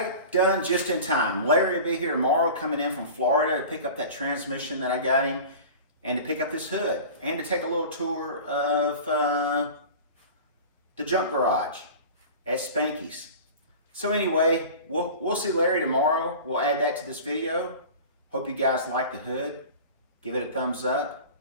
done just in time. Larry will be here tomorrow coming in from Florida to pick up that transmission that I got him and to pick up this hood and to take a little tour of the junk garage at Spanky's. So anyway, we'll see Larry tomorrow. We'll add that to this video. Hope you guys like the hood. Give it a thumbs up.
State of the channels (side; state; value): both; inverted; correlation -0.37